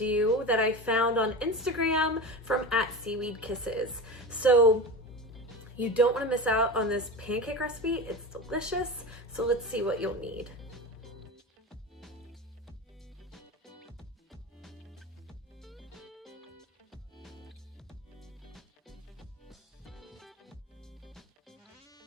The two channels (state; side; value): normal; both; correlation 0.27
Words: that I found on Instagram from @SeaweedKisses. So you don't want to miss out on this pancake recipe. It's delicious. So let's see what you'll need.